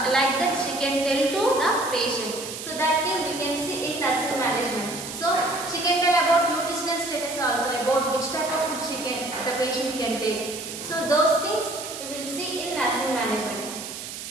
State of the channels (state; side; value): noise; right; hiss, 9 dB below the sound